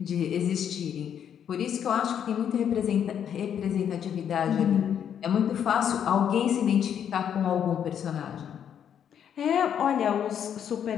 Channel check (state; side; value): quieter; right; 8.8 dB